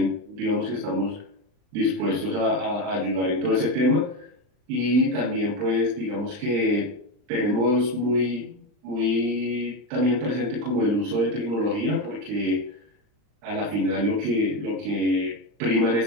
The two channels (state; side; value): late; left; 39 ms